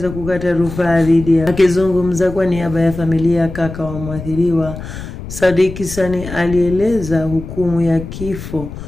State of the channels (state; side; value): noise; left; rumble, 10 dB below the sound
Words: kukata rufaa dhidi ya. Akizungumza kwa niaba ya familia kaka wa mwathiriwa, Sadiq Sani alieleza hukumu ya kifo